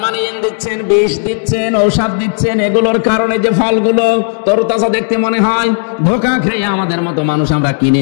দিচ্ছেন, বিষ দিচ্ছেন, ঔষধ দিচ্ছেন, এগুলোর কারণে যে ফলগুলো তরতাজা দেখতে মনে হয়, ধোঁকা খেয়ে আমাদের মতো মানুষ আমরা কিনে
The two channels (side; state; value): right; silent; digital silence